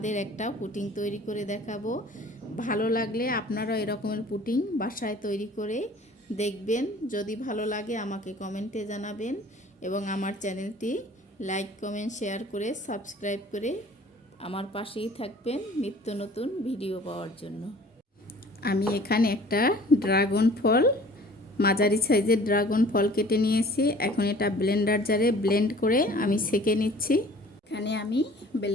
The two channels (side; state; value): both; normal; correlation 0.49